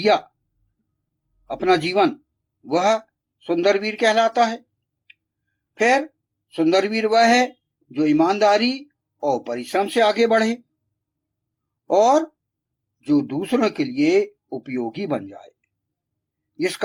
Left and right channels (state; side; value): identical; both; correlation 1.00